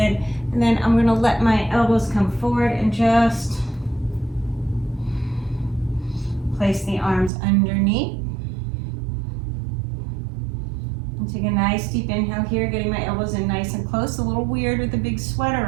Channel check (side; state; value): left; drops out; at 7.3 s